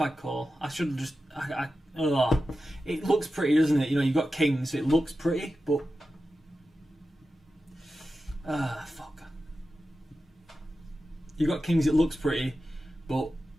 call. I should have just. It looks pretty, doesn't it? You know, you've got kings, so it looks pretty, but. Fuck. You've got kings, it looks pretty, but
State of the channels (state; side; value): normal; both; correlation 0.92